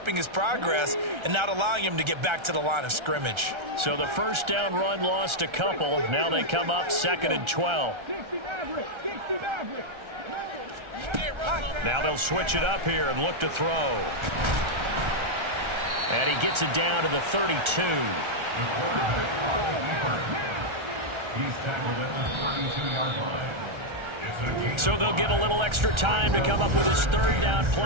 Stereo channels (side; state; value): left; late; 1.3 ms